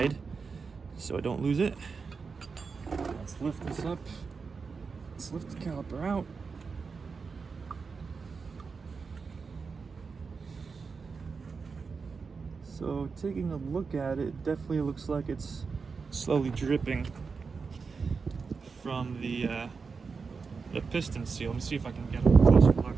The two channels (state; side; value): quieter; left; 5.0 dB